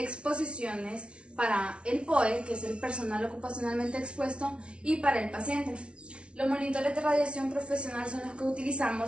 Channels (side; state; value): left; late; 0.059 ms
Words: para el POE, que es el personal ocupacionalmente expuesto, y para el paciente. Los monitores de radiación profesional son los que